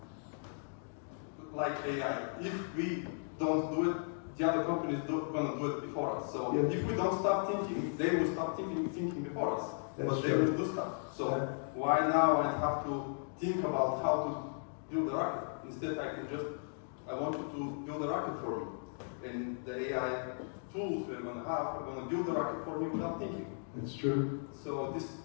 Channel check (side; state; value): right; silent; digital silence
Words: like AI, if we don't do it, the other companies are going to do it before us. So Yeah. if we don't start thinking, they will start thinking before us. That's but they true. will do stuff. So Yeah. why now I have to think about how to build a rocket? Instead, I want you to build a rocket for me. And the AI tools we're going to have are going to build a rocket for me without thinking. It's true. So this